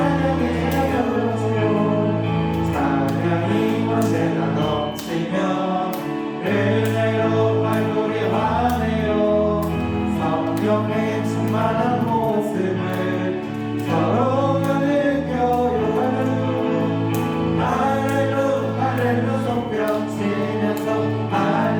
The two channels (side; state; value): both; identical; correlation 1.00